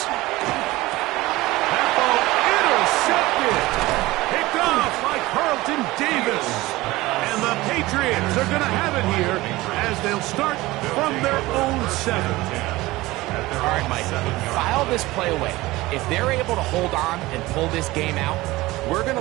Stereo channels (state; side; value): quieter; left; 19.3 dB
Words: That ball intercepted. Picked off by Carlton Davis. And the Patriots are going to have it here as they'll start from their own 7. All right, Mike, file this play away. If they're able to hold on and pull this game out, we're going